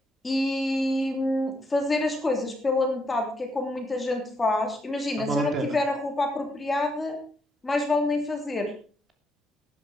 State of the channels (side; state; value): both; normal; correlation 0.76